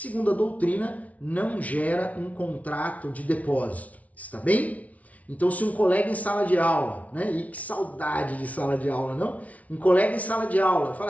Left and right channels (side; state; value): right; late; 0.069 ms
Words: a doutrina, não gera um contrato de depósito. Está bem? Então, se um colega em sala de aula, né? E que saudade de sala de aula, não? Um colega em sala de aula fala